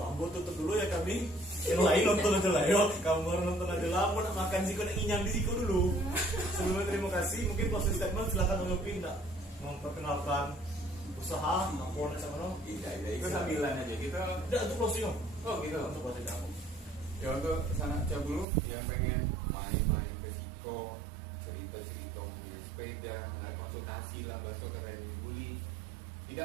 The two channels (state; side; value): drops out; left; at 18.4 s